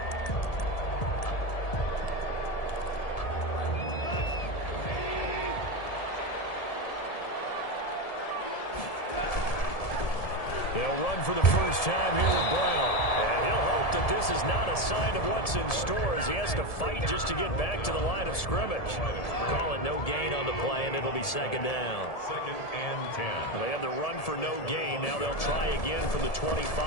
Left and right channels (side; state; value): right; late; 1.7 ms